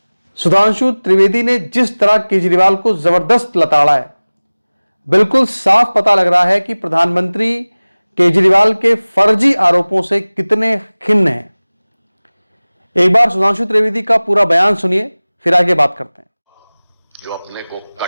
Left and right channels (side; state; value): both; inverted; correlation -1.00